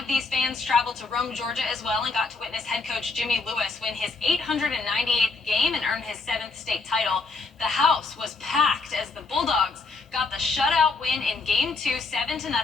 these fans traveled to Rome, Georgia as well, and got to witness head coach Jimmy Lewis win his 898th game and earn his 7th state title. The house was packed as the Bulldogs got the shutout win in Game 2, 7-0,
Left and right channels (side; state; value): right; quieter; 4.1 dB